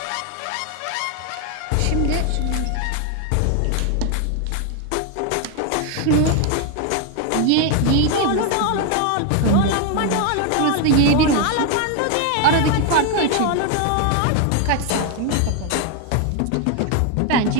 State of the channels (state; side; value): different; both; correlation 0.01